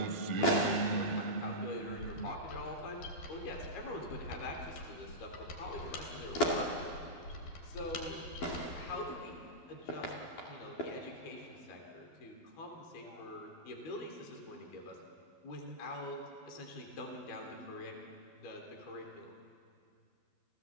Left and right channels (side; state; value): right; late; 12 ms